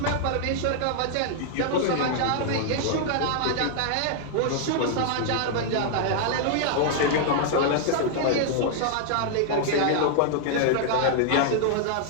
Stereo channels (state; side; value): different; both; correlation -0.01